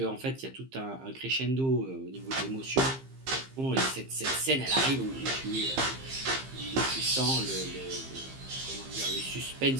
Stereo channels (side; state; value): left; late; 15 ms